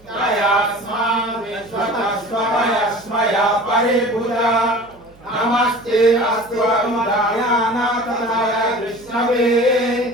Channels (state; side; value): noise; right; hum, 28 dB below the sound